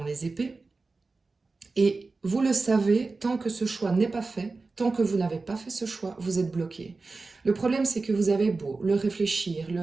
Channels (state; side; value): quieter; left; 3.8 dB